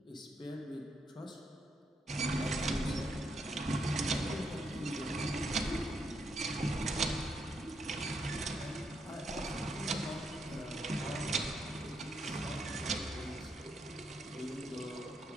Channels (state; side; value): normal; both; correlation 0.78